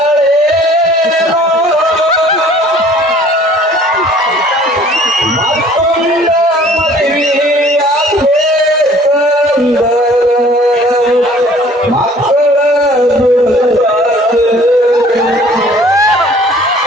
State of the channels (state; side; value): normal; both; correlation 0.53